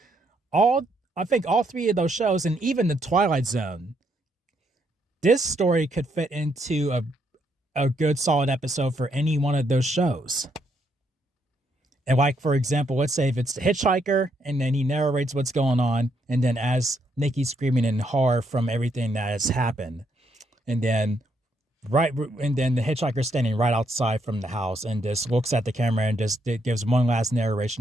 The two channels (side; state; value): both; normal; correlation 0.75